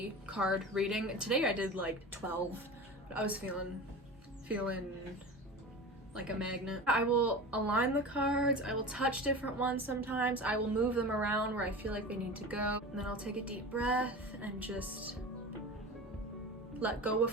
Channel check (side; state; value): both; normal; correlation 0.31